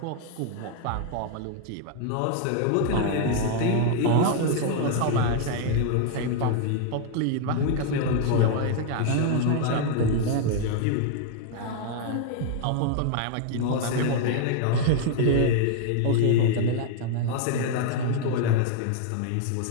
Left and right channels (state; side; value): different; both; correlation 0.00